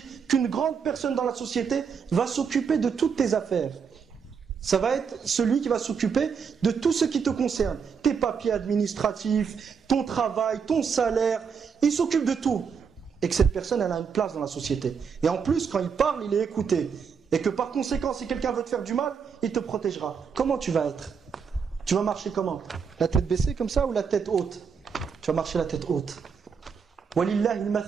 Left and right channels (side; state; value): left; quieter; 6.3 dB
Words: qu'une grande personne dans la société va s'occuper de toutes tes affaires, ça va être celui qui va s'occuper de tout ce qui te concerne. Tes papiers administratifs, ton travail, ton salaire, il s'occupe de tout. Et que cette personne, elle a une place dans la société. Et en plus, quand il parle, il est écouté. Et que par conséquent, si quelqu'un veut te faire du mal, il te protégera. Comment tu vas être? Tu vas marcher comment? La tête baissée comme ça ou la tête haute? Tu vas marcher la tête haute. Walillahi